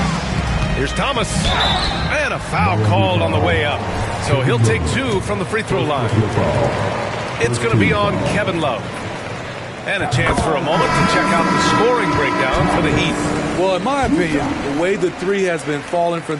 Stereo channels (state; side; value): identical; both; correlation 1.00